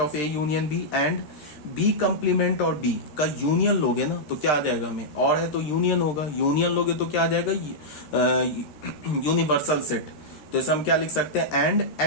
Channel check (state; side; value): late; right; 13 ms